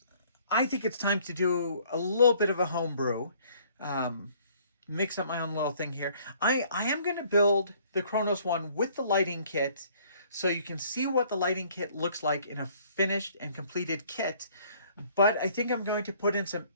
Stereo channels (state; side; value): inverted; both; correlation -0.59